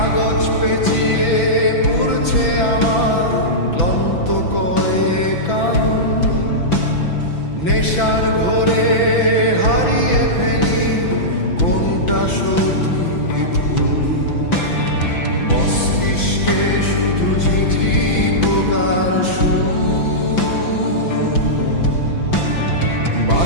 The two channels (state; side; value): late; right; 6.0 ms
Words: পেঁচিয়ে পুড়ছে আমার ক্লান্ত কয়েক আঙুল। নেশার ঘোরে হারিয়ে ফেলি কোনটা সঠিক ভুল। মস্তিষ্কে শুধু ঝিঝি পোকার সুর।